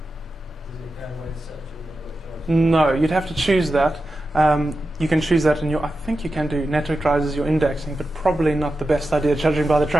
does it go away and search all network drives? No, you'd have to choose that. You can choose that in your, I think you can do network drives as your indexing, but probably not the best idea judging by the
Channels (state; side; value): normal; both; correlation 0.91